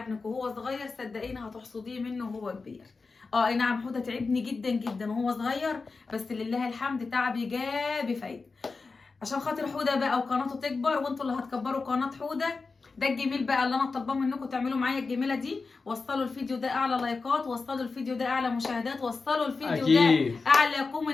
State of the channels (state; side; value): quieter; right; 4.2 dB